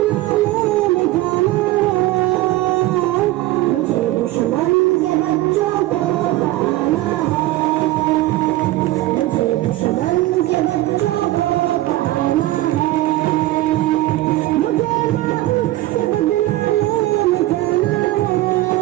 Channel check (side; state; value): left; quieter; 16.9 dB